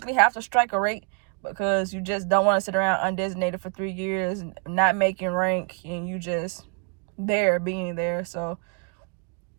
have to strike a rate, because you just don't want to sit around undesignated for 3 years and not making rank, and you just being there. So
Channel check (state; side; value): quieter; left; 38.7 dB